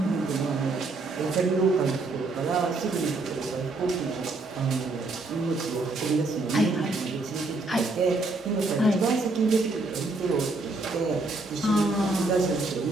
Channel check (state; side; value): quieter; left; 3.3 dB